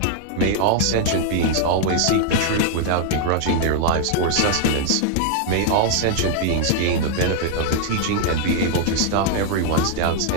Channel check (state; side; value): different; both; correlation 0.00